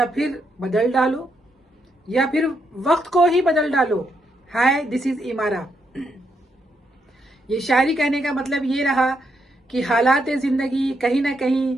फिर बदल डालो, या फिर वक्त को ही बदल डालो। हाय, दिस इज इमारा। ये शायरी कहने का मतलब ये रहा कि हालात जिंदगी कहीं ना कहीं,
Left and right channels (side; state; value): both; normal; correlation 0.78